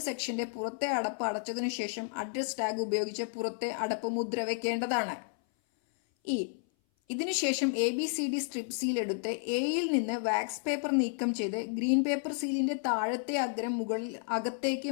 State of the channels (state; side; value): silent; right; 57 dB below the other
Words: സെക്ഷന്റെ പുറത്തെ അടപ്പ് അടച്ചതിനു ശേഷം അഡ്രസ് ടാഗ് ഉപയോഗിച്ച് പുറത്തെ അടപ്പ് മുദ്ര വയ്ക്കേണ്ടതാണ്. ഇ. ഇതിനുശേഷം ABCD സ്ട്രിപ്പ് സീൽ എടുത്ത് എയിൽ നിന്ന് വാക്സ് പേപ്പർ നീക്കം ചെയ്ത് ഗ്രീൻ പേപ്പർ സീലിന്റെ താഴത്തെ അഗ്രം അകത്തേക്ക്